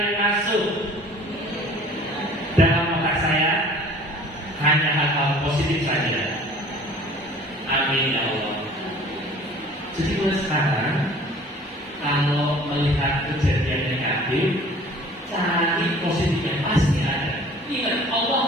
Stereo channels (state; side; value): normal; both; correlation 0.49